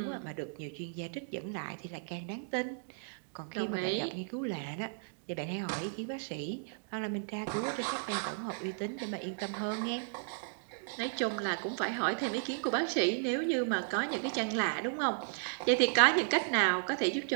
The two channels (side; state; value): left; silent; digital silence